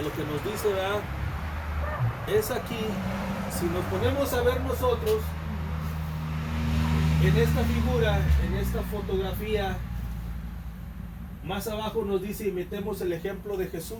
lo que nos dice, ¿verdad? Es aquí, si nos ponemos a ver nosotros, en esta figura, en esta fotografía, más abajo nos dice, imitemos el ejemplo de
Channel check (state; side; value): identical; both; correlation 1.00